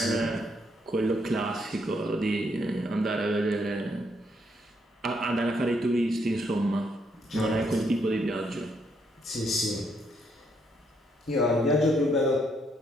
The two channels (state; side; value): normal; both; correlation 0.74